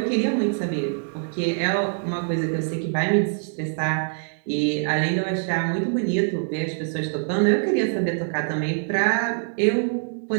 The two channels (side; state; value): left; silent; digital silence